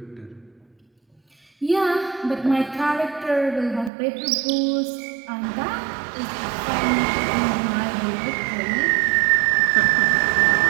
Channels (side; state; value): left; drops out; at 3.9 s